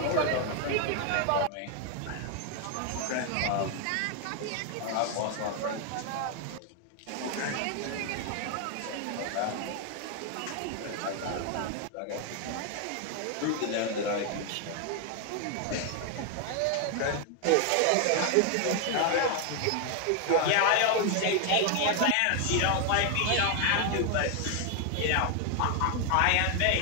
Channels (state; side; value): different; both; correlation 0.00